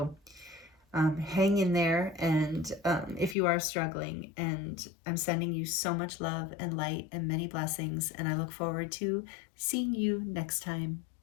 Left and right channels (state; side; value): drops out; right; at 3.4 s